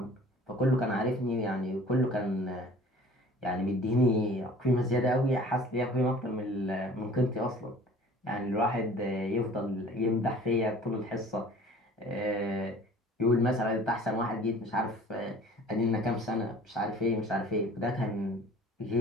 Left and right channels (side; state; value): both; normal; correlation 0.48